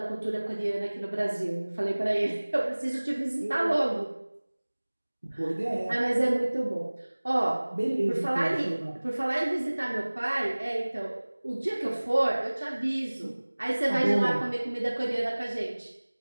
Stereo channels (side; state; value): both; inverted; correlation -1.00